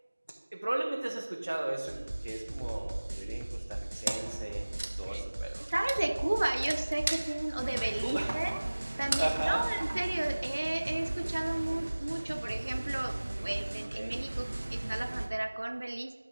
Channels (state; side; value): inverted; both; correlation -1.00